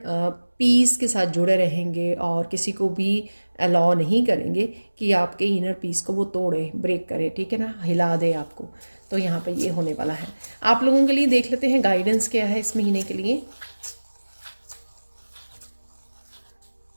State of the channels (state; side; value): inverted; both; correlation -1.00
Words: पीस के साथ जुड़े रहेंगे और किसी को भी अलाउ नहीं करेंगे कि आपके इनर पीस को वो तोड़े, ब्रेक करे, ठीक है ना, हिला दे आपको। तो यहाँ पे ये होने वाला है। आप लोगों के लिए देख लेते हैं गाइडेंस क्या है इस महीने के लिए।